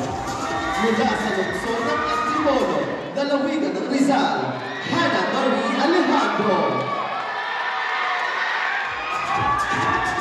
Mula sa lungsod ng Antipolo, lalawigan ng Rizal, Hannah Marie Alejandro.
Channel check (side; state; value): both; identical; correlation 1.00